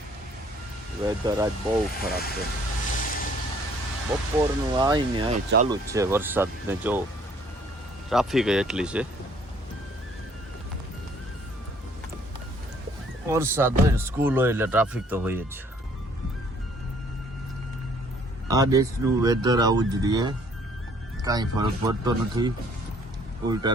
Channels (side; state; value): both; normal; correlation 0.60